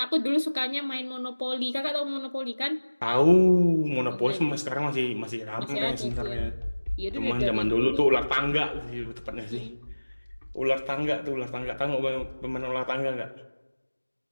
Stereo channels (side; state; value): both; inverted; correlation -1.00